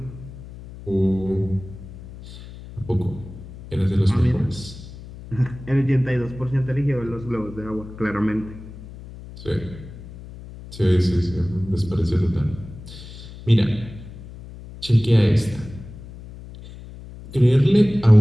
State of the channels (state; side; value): noise; left; hum, 15 dB below the sound